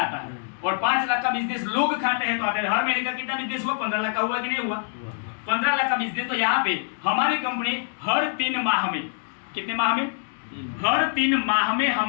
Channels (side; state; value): right; silent; digital silence